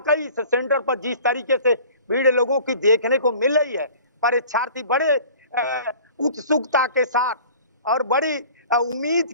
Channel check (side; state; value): both; inverted; correlation -0.47